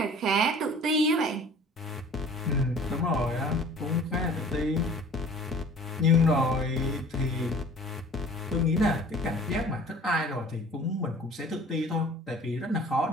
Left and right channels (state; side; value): normal; both; correlation 0.47